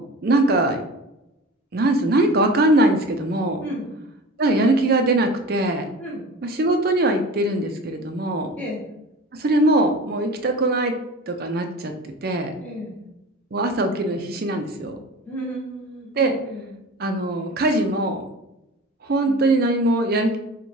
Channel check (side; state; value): both; normal; correlation 0.37